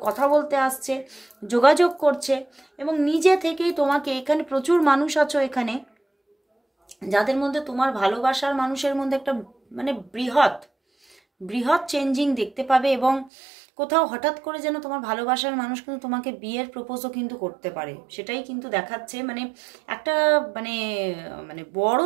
কথা বলতে আসছে, যোগাযোগ করছে এবং নিজে থেকেই তোমাকে, এখানে প্রচুর মানুষ আছো এখানে যাদের মধ্যে তোমার ভালোবাসার মানুষের মধ্যে একটা মানে বৃহৎ চেঞ্জিং দেখতে পাবে এবং কোথাও হঠাৎ করে যেন তোমার ভালোবাসার মানুষ কিন্তু তোমাকে বিয়ের প্রপোজও কিন্তু করতে পারে, সেটাই কিন্তু দেখাচ্ছে। মানে একটা মানে মানে বড়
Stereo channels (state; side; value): drops out; left; at 13.3 s